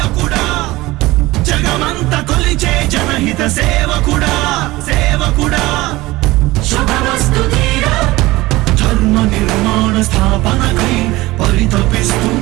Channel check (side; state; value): left; quieter; 19.4 dB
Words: జగమంత కొలిచే జనహిత సేవకుడా సేవకుడా శుభమస్తు ధీరా ధర్మ నిర్మాణ స్థాపనకై